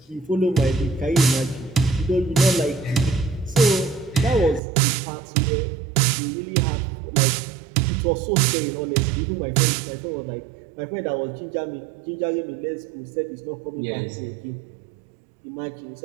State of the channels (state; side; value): drops out; left; at 4.6 s